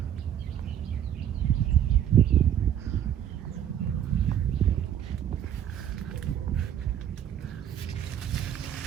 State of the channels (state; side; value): quieter; left; 10.1 dB